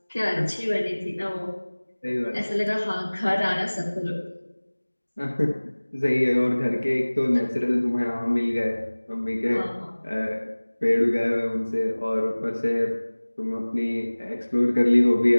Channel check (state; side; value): inverted; both; correlation -1.00